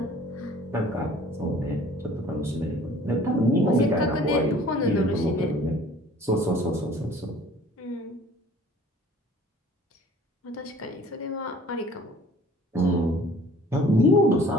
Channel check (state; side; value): normal; both; correlation 0.51